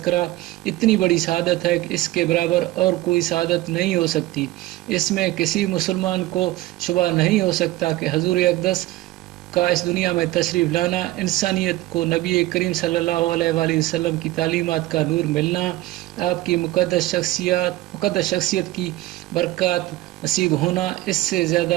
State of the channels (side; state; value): left; quieter; 17.0 dB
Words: اتنی بڑی سعادت ہے کہ اس کے برابر اور کوئی سعادت نہیں ہو سکتی۔ اس میں کسی مسلمان کو شبہ نہیں ہو سکتا کہ حضور اقدس کا اس دنیا میں تشریف لانا، انسانیت کو نبی کریم صلی اللہ علیہ وآلہ وسلم کی تعلیمات کا نور ملنا، آپ کی مقدس شخصیت کی برکات نصیب ہونا، اس سے